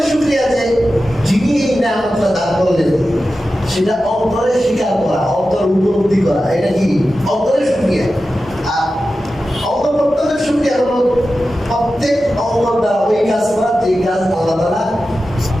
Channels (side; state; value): both; normal; correlation 0.93